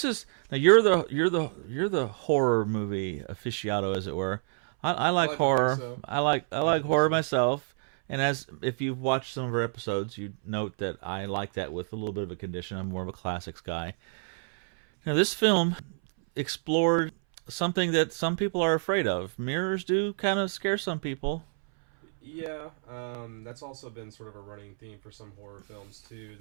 you're the horror movie aficionado, as it were. I like horror. So. I like horror myself. And if you've watched some of our episodes, you note that I like that with a little bit of a condition. I'm more of a classics guy. Now, this film explored something that some people are afraid of. Mirrors do kind of scare some people. Yeah, that's also been sort of a running theme for some horror films too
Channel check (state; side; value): silent; left; 59 dB below the other